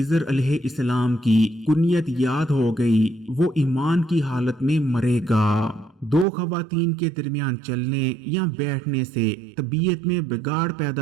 अलैहिस्सलाम की कुनियत याद हो गई वो ईमान की हालत में मरेगा। दो खवातीन के दरमियान चलने या बैठने से तबीयत में बिगाड़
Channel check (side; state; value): left; drops out; at 6.2 s